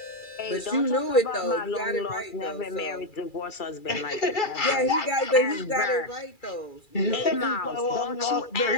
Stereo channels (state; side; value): late; right; 2.3 ms